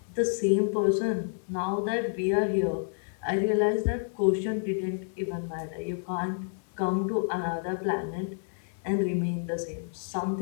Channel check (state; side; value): silent; right; 58 dB below the other